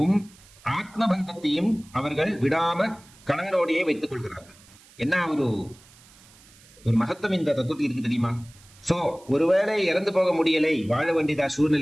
ஆத்மபந்தத்தையும் அவர்கள் விடாம கணவனோடையே வைத்துக் கொள்கிறார்கள். என்ன ஒரு மகத்துவம் இந்த தத்துவத்தில் இருக்கு தெரியுமா? சோ ஒருவேளை இறந்து போக முடியலை, வாழ வேண்டியதா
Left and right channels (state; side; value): noise; right; hiss, 25 dB below the sound